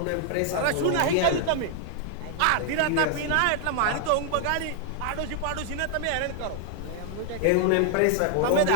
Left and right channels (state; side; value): different; both; correlation 0.00